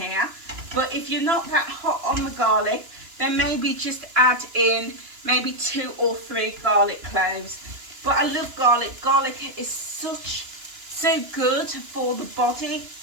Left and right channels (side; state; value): left; late; 2.9 ms